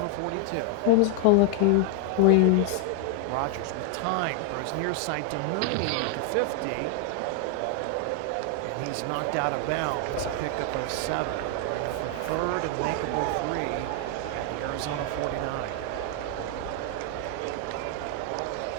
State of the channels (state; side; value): different; both; correlation 0.00